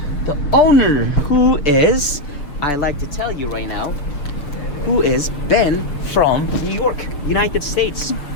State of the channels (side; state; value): right; late; 6.5 ms